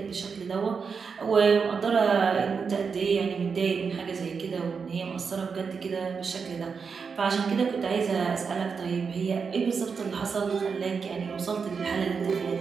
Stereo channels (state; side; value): quieter; left; 5.6 dB